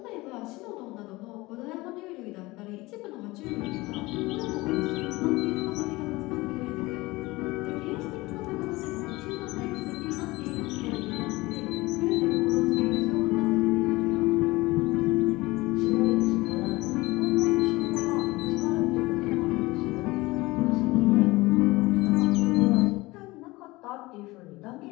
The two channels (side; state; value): right; quieter; 21.1 dB